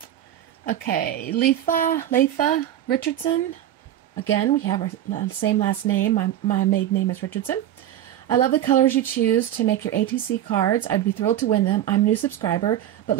Okay, Letha Richardson. Again, we have our same last name. My maiden name is Richardson. I love the colors you choose to make your ATC cards. I'd be thrilled to win them. I'm a new subscriber, but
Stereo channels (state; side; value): quieter; left; 11.8 dB